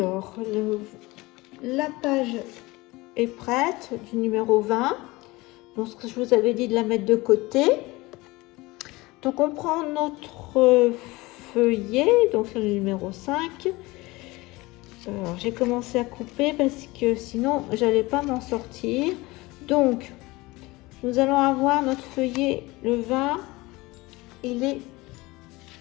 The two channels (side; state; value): right; quieter; 21.7 dB